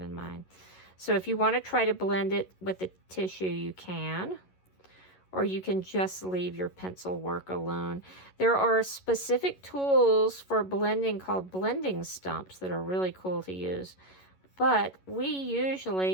mine. So if you want to try to blend it with the tissue, you can. Or you can just leave your pencil work alone. There are specific tools for blending called blending stumps that are really cool to use. But we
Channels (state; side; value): late; right; 11 ms